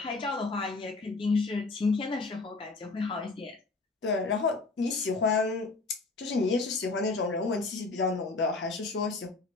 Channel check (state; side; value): quieter; right; 3.7 dB